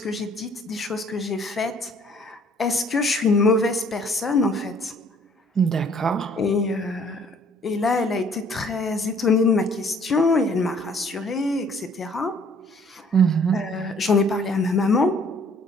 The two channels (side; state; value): both; normal; correlation 0.58